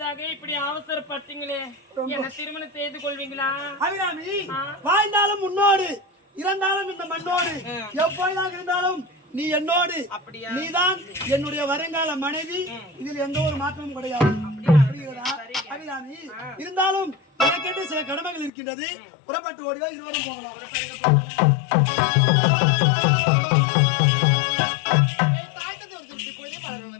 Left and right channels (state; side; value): drops out; right; at 18.5 s